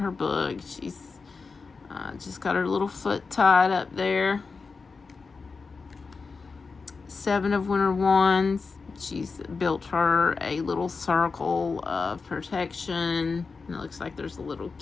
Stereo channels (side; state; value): right; quieter; 4.6 dB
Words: book. She's just got her little foot tied up there. Seven of Winter Wands. She's built her a little circle of protection. And it looks like there's a little